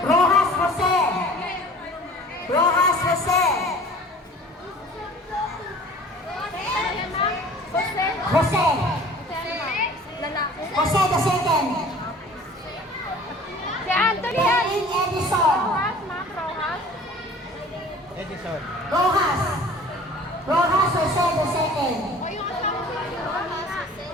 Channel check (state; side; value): normal; both; correlation 0.46